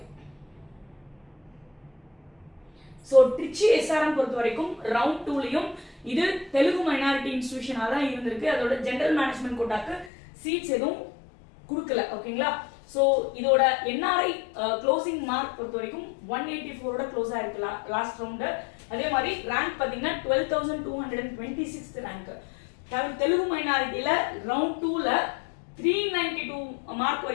சோ ட்ரிச்சி எஸ்ஆர்எம் பொறுத்த வரைக்கும் ரவுண்ட் 2லயும் இது தெலுங்கு மைனாரிட்டி இன்ஸ்டிடியூஷனா தான் இருந்திருக்கு. அதோட ஜெனரல் மேனேஜ்மெண்ட் கோட்டாக்கு சீட்ஸ் எதுவும் கொடுக்கல. ஓகேங்களா? சோ இதோட என்ஆர்ஐ க்ளோசிங் மார்க் பொறுத்த வரைக்கும் 184ஓட க்ளோஸ் ஆயிருக்கு லாஸ்ட் ரவுண்ட். அதே மாதிரி ரேங்க் பாத்தீங்கன்னா 12,226 ரேங்க். தெலுங்கு மைனாரிட்டில ரவுண்ட் 2ல 392 மார்க்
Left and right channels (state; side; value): drops out; right; at 10.1 s